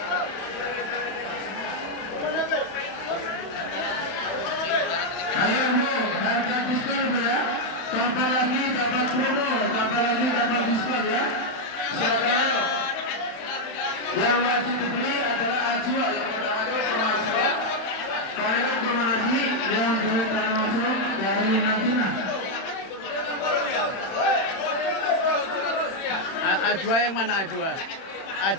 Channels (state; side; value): late; right; 31 ms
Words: Ayo Bu, harga diskon Bu ya. Kapan lagi dapat promo, kapan lagi dapat diskon ya. Silakan ayo. Yang wajib dibeli adalah Ajwa yang ada termasuk. Kalau kurma Nabi yang beli termasuk dari Madinah. Ajwa yang mana Ajwa?